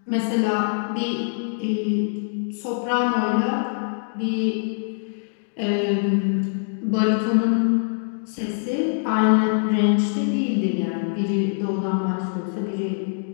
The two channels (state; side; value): silent; right; digital silence